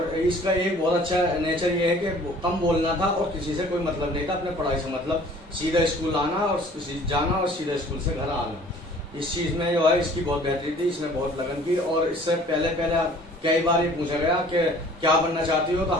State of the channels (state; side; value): normal; both; correlation 0.51